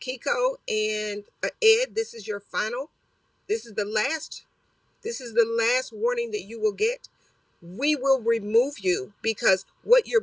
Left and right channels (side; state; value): both; normal; correlation 0.97